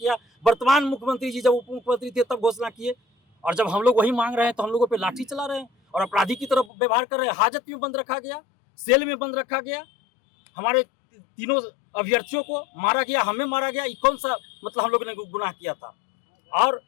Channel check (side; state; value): right; drops out; at 6.7 s